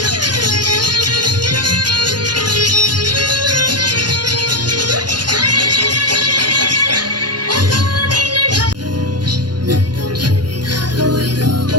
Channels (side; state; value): left; late; 0.70 ms